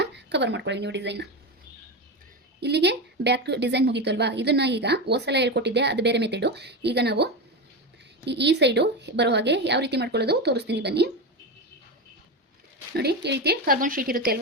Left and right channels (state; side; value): normal; both; correlation 0.17